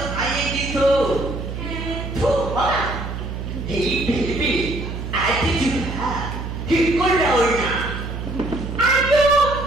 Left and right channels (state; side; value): noise; right; hum, 6 dB below the sound